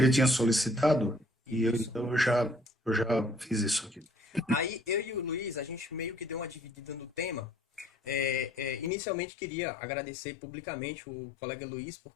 tinha solicitado Isso. então eu já fiz isso aqui. Aí eu e o Luiz, a gente meio que deu uma dividida no tema. Inicialmente queria agradecer publicamente o colega Luiz,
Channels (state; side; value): drops out; right; at 8.9 s